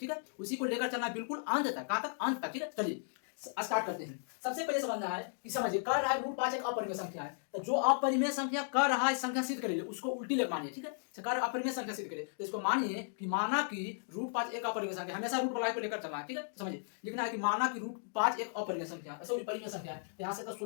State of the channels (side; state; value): right; silent; digital silence